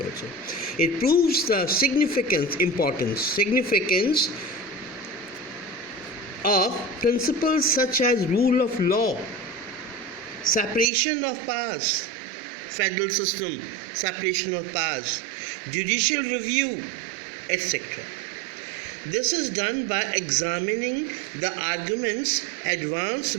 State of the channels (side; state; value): left; drops out; at 10.9 s